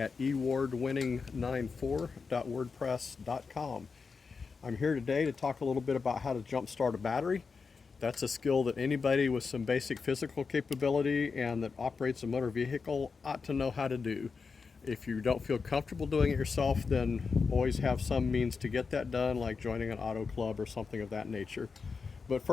ewardwinning94.wordpress.com. I'm here today to talk a little bit about how to jump start a battery. That's a skill that anybody with some basic physical capability and that operates a motor vehicle ought to know how to do. If you don't feel comfortable doing it yourself, then always have some means to get that done, like joining an auto club or something of that nature. But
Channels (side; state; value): right; quieter; 5.0 dB